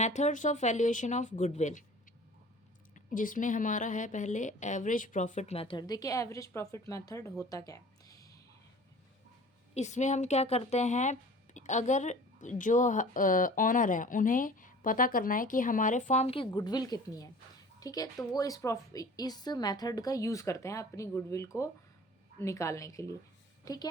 of valuation of goodwill, जिसमें हमारा है पहले एवरेज प्रॉफिट मेथड। देखिए एवरेज प्रॉफिट मेथड होता क्या है। इसमें हम क्या करते हैं, अगर जो ऑनर है उन्हें पता करना है कि हमारे फर्म की गुडविल कितनी है, ठीक है, तो वो इस मेथड का यूज़ करते हैं अपनी गुडविल को निकालने के लिए। ठीक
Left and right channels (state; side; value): normal; both; correlation 0.44